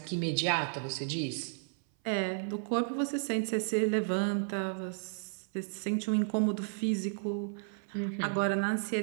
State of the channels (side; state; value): left; silent; 56 dB below the other